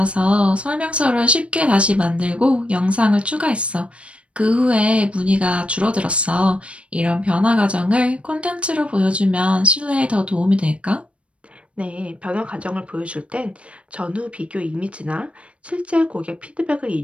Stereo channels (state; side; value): late; left; 0.061 ms